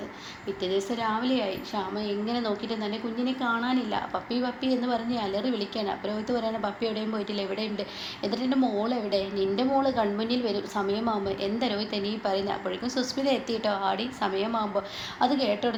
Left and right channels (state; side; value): identical; both; correlation 1.00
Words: പിറ്റേ ദിവസം രാവിലെയായി. ശ്യാമ എങ്ങനെ നോക്കിയിട്ട് തന്നെ കുഞ്ഞിനെ കാണാനില്ല. പപ്പി പപ്പി എന്ന് പറഞ്ഞ് അലറി വിളിക്കുകയാണ്. അപ്പോൾ രോഹിത്ത് പറയുകയാണ്, പപ്പി എവിടെയും പോയിട്ടില്ല, എവിടെയുണ്ട്? എന്നിട്ട് എൻ്റെ മോൾ എവിടെ? നിൻ്റെ മോള് കൺമുന്നിൽ വരും സമയമാകുമ്പോൾ. എന്താ രോഹിത്ത് നീ പറയുന്നത്? അപ്പോഴേക്കും സുസ്മിത എത്തിയിട്ടോ. ആടി സമയമാകുമ്പോൾ. അത് കേട്ട